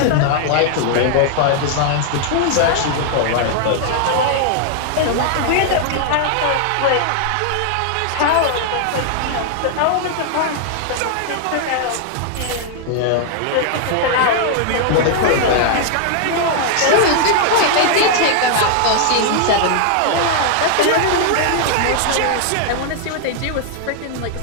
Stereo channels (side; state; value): both; different; correlation 0.00